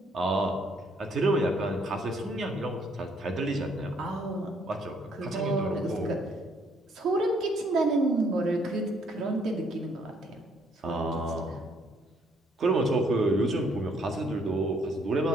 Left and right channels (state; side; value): normal; both; correlation 0.67